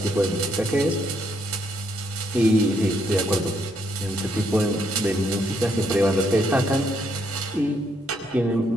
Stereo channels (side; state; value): both; normal; correlation 0.73